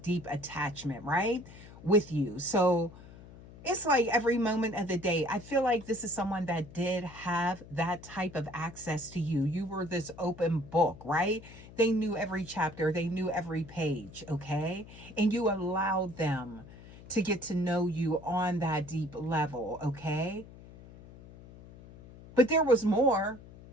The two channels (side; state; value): left; noise; hum, 18 dB below the sound